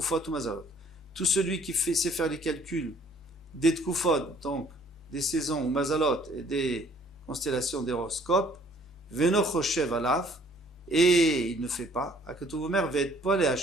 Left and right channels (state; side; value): normal; both; correlation 0.59